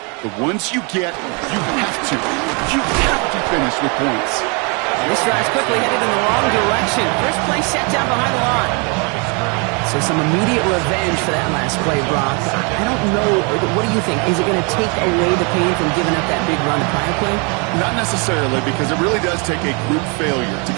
But once you get, you have to finish with points. This drive's quickly headed in the wrong direction. First play set down behind the line. So some immediate revenge for that last play, Brock. I don't know. What do you think? Is it going to take away the pain from giving up that big run the prior play? Not necessarily, because it really does take a group failure to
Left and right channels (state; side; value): quieter; left; 33.3 dB